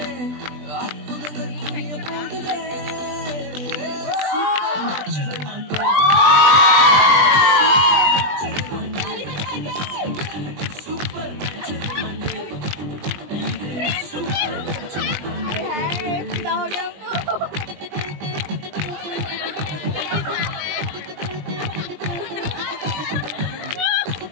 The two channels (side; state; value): left; late; 20 ms